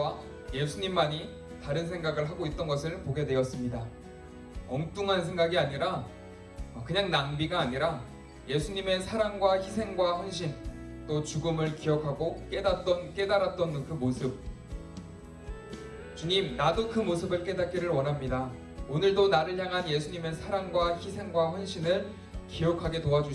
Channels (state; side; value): identical; both; correlation 1.00